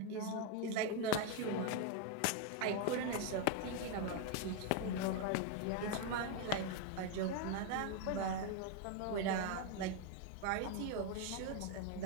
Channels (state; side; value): different; both; correlation 0.01